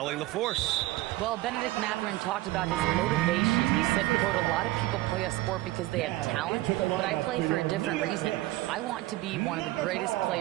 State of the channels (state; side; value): quieter; left; 17.8 dB